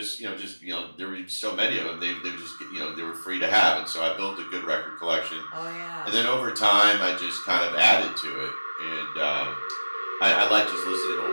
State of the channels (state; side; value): inverted; both; correlation -1.00